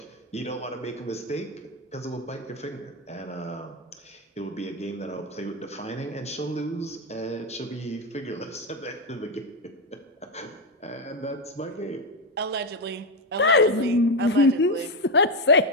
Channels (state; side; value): normal; both; correlation 0.09